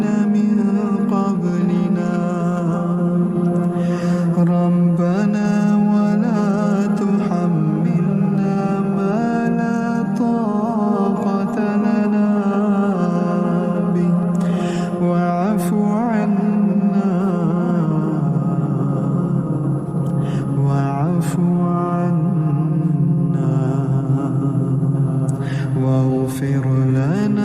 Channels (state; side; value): identical; both; correlation 1.00